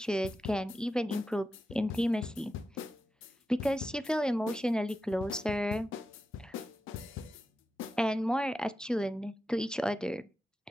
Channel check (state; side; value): normal; both; correlation 0.90